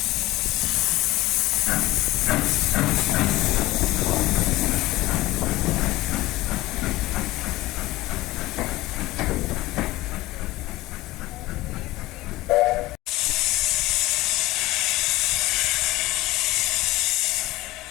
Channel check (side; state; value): right; quieter; 18.5 dB